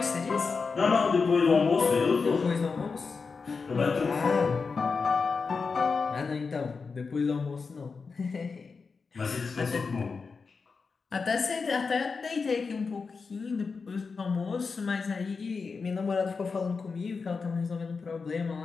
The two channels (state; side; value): quieter; right; 4.8 dB